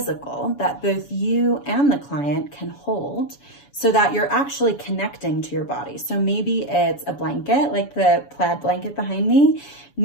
that both you and the client can hold so that you're actually connecting to your body. So maybe it's a blanket, like the plaid blanket behind me.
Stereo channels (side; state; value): right; late; 7.1 ms